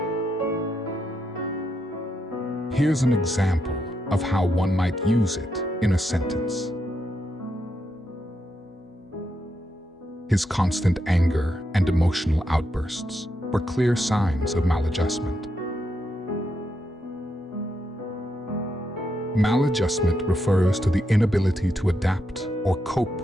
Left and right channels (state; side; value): normal; both; correlation 0.82